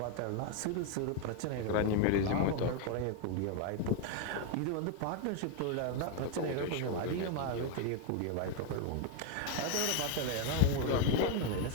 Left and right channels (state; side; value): different; both; correlation 0.01